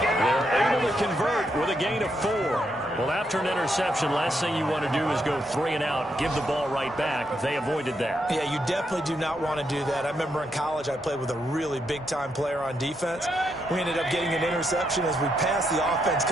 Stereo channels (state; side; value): normal; both; correlation 0.79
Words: They're able to convert with a gain of 4. Well, after an interception, last thing you want to do is go 3 and out, give the ball right back. They avoided that. Yeah, you definitely do not want to do that. I remember in college I played with a really big-time player on defense. We ended up getting an interception as we passed the offense